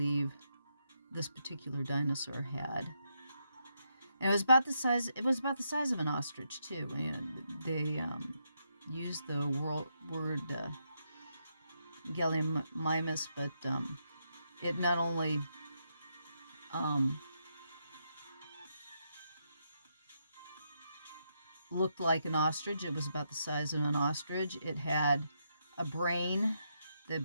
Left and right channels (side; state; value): both; inverted; correlation -0.80